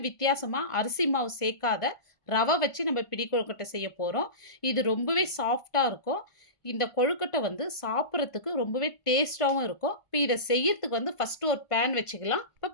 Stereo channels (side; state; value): right; late; 1.5 ms